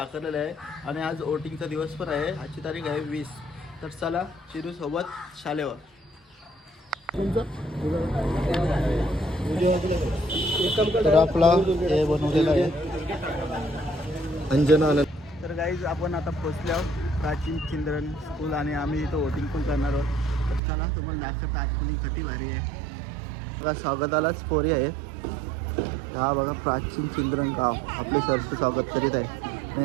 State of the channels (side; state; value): left; drops out; at 20.6 s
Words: आहे आणि आज वोटिंगचा दिवस पण आहे. आजची तारीख आहे 20. तर चला चिरू सोबत शाळेवर. तर आपला हे बनवलेलं आहे अंजना. तर गाईज आपण आता पोचलो प्राचीन चिंद्रन स्कूल आणि आम्ही इथं वोटिंग पण करणार आहोत. तर चला तुम्हाला दाखवतो आतमध्ये किती भारी आहे. बघा स्वागतालाच पोरी आहे. हा बघा प्राचीन चिंद्रन गाव आपले सरचं स्वागत करीत आहे